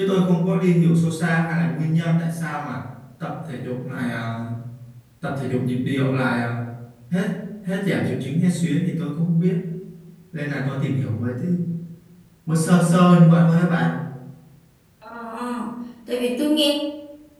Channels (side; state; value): both; identical; correlation 1.00